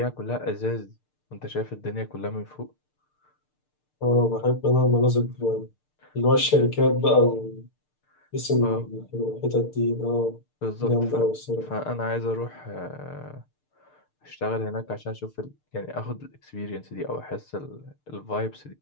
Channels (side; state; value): right; late; 6.7 ms